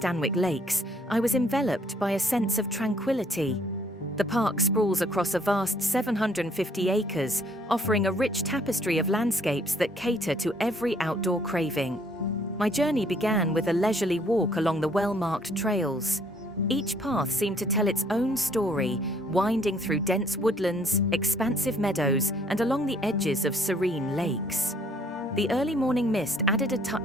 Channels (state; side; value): normal; both; correlation 0.63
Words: Lakes, I was enveloped by a sense of tranquility. The park sprawls across a vast 750 acres, offering a rich tapestry of landscapes that cater to every outdoor craving. My journey began with a leisurely walk along the well-marked trails. Each path seemed to tell its own story, winding through dense woodlands, expansive meadows, and along the edges of serene lakes. The early morning mist added a